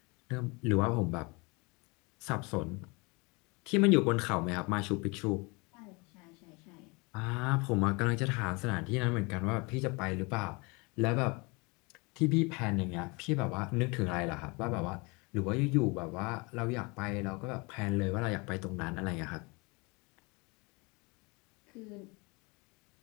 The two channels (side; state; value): right; quieter; 28.2 dB